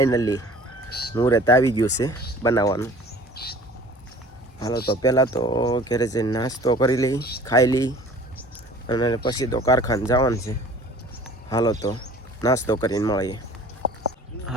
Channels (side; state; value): both; normal; correlation 0.47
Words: મુહૂર્ત આવી ગયું છે બનાવવાનું. હાલો તો પહેલાં તો ઘરે જઈને નાસ્તો કરી લઈ, ખાઈ લઈ અને પછી તો કારખાને જવાનું છે. હાલો તો નાસ્તો કરીને મળીએ.